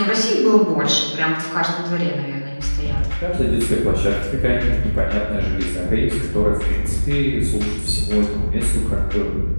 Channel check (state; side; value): inverted; both; correlation -1.00